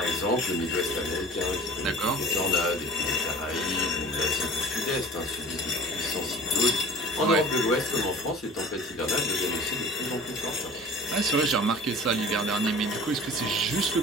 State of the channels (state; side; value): normal; both; correlation 0.44